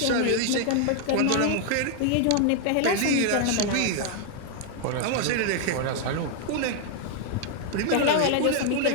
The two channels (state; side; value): different; both; correlation 0.00